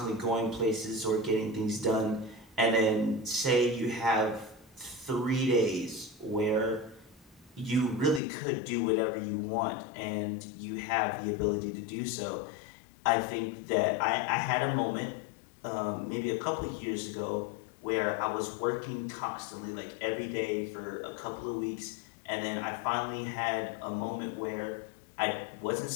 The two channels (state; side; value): drops out; right; at 8.2 s